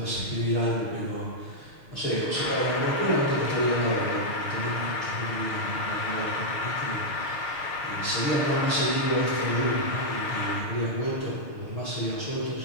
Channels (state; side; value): late; right; 6.6 ms